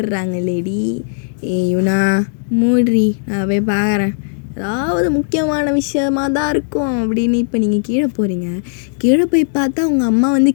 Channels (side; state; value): right; silent; digital silence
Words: லேடி. இவனா மூட்ரி, நான் போய் பார்க்குறேன். ஏதாவது முக்கியமான விஷயமாக தான் இருக்கும் அப்படின்னு. இப்போ நீங்கள் கீழே போகிறீங்க. கீழே போய் பார்த்தா உங்கள் அம்மா